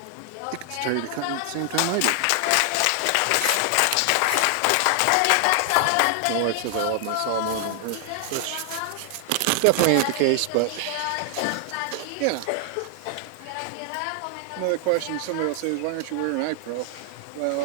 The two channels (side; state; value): both; different; correlation 0.00